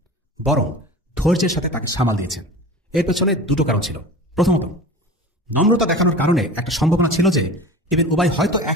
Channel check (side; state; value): both; normal; correlation 0.36